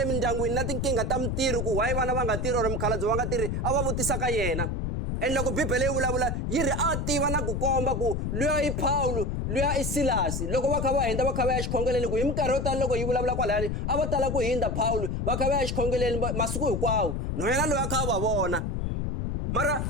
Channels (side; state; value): left; noise; rumble, 1 dB below the sound